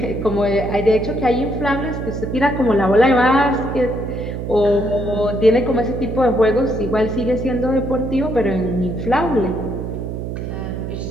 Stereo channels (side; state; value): right; noise; hum, 6 dB below the sound